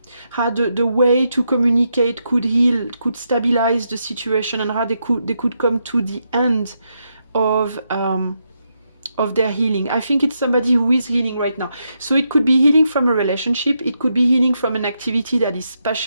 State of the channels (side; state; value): both; inverted; correlation -0.82